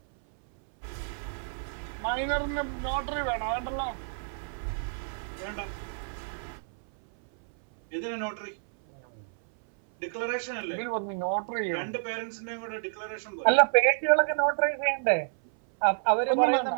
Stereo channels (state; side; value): silent; left; 58 dB below the other